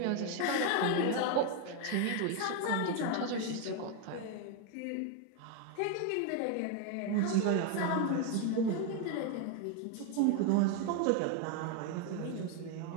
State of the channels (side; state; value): both; different; correlation 0.01